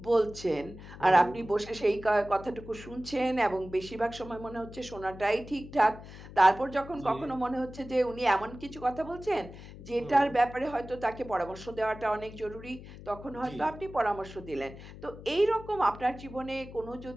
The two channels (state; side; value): noise; left; hum, 15 dB below the sound